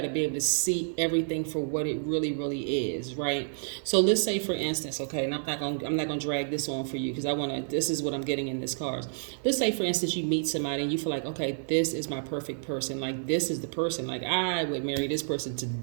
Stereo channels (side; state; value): left; silent; 58 dB below the other